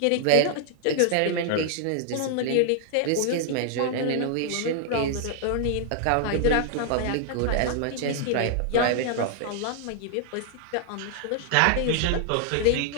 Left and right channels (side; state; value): both; different; correlation 0.00